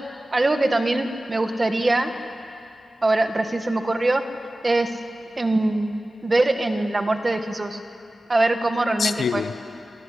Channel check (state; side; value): normal; both; correlation 0.96